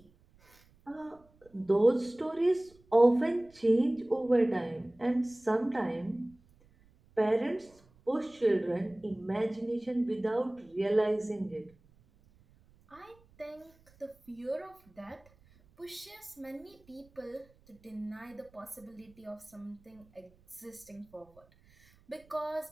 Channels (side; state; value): right; noise; rumble, 30 dB below the sound